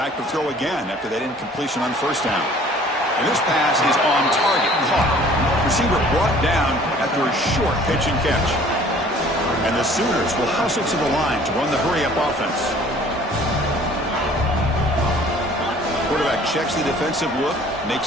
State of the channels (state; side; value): normal; both; correlation 0.52